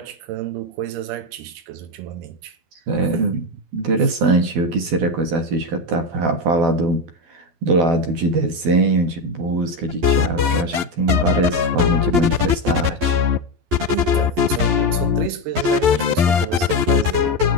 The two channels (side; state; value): left; late; 11 ms